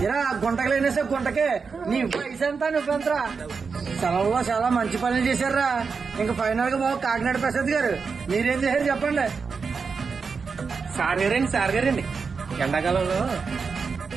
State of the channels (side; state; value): left; quieter; 5.2 dB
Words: ఇరా గుంటకి లేనేసే గుంటకే. నీ వయసు ఎంత నువ్వెంతరా? సెలవులో చాలా మంచి పనులు చేశారా. ఇంకా ఫైనల్ గా బాబు కాకినాడ ప్రసాద్ గారు మీరేం చేశారు చెప్పండి. సార్ గారండి ఎండాకాలంలో